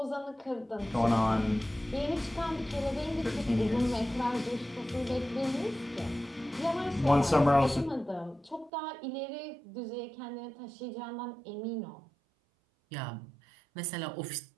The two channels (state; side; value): drops out; left; at 8.7 s